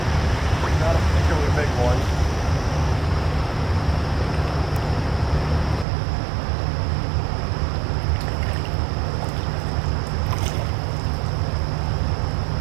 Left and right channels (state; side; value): drops out; left; at 5.9 s